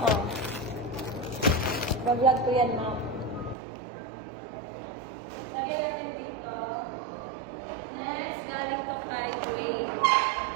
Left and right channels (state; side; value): drops out; left; at 3.6 s